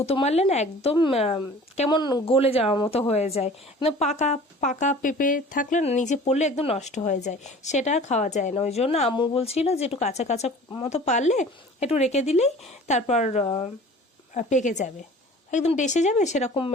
মারলে না একদম কেমন গলে যাওয়ার মতো হয়ে যায়। একদম পাকা পাকা পেঁপে থাকলে না নিচে পড়লে একদম নষ্ট হয়ে যায়, সেটা আর খাওয়া যায় না। ওই জন্য আম্মু বলছিল যে একটু কাঁচা কাঁচা মতো পারলে একটু রেখে দিলেই তারপর পেকে যাবে, একদম ডেসে যাবে, সেরকম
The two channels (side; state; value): both; normal; correlation 0.45